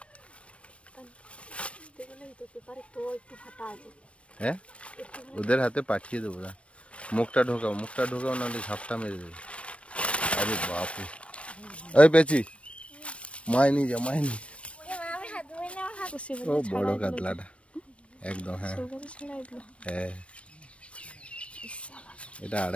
হ্যাঁ ওদের হাতে পাঠিয়ে দেবো না, মুখটা ঢোকাও নাহলে ঝাপটা মেরে দেবে। আরে বাপরে, ওই পেছি মাইনি যা মাইনি। ও বড় কাতলাটা একদম। হ্যাঁ হ্যাঁ, এটা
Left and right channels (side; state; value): right; late; 0.061 ms